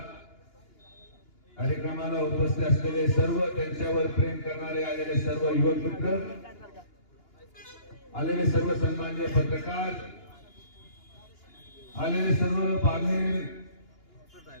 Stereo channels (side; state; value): right; late; 2.9 ms